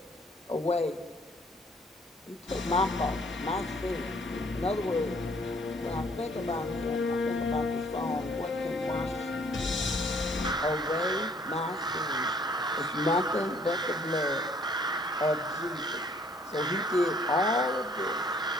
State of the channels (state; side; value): normal; both; correlation 0.61